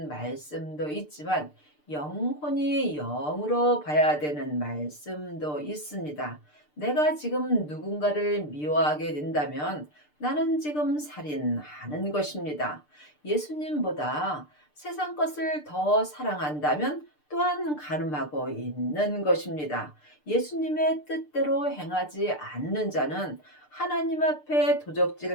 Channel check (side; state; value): right; late; 6.7 ms